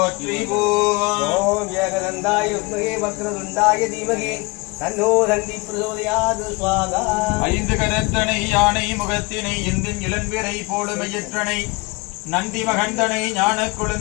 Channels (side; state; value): right; quieter; 26.2 dB